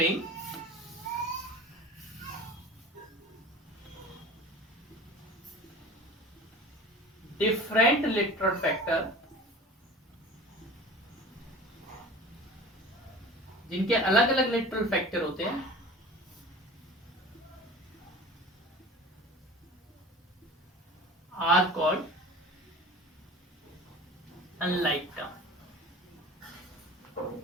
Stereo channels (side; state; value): both; normal; correlation 0.39